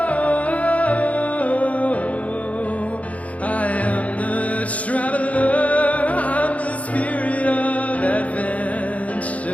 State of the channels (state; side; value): late; right; 0.067 ms